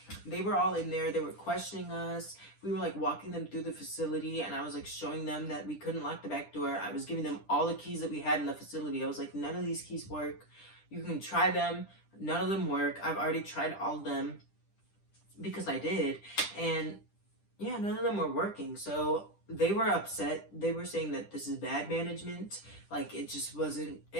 they were all in there. They were questioning us. We were like walking them through the facility, and I was like showing them that we couldn't lock the back door. I was giving them all the keys that we had in the facility. I was like, none of these keys work. You can try them. None of them work. I've already tried all of them because I did. And yeah, none of them were working. So they were upset. They were saying that this is bad management. Like, it just wasn't,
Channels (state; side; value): late; right; 10 ms